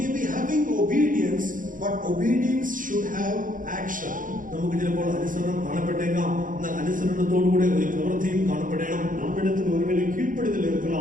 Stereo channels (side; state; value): left; late; 0.39 ms